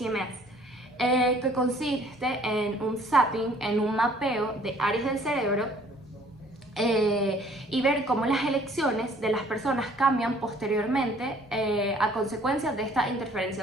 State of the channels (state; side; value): normal; both; correlation 0.57